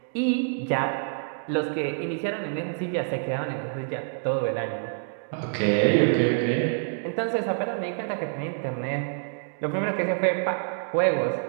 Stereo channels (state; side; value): silent; left; digital silence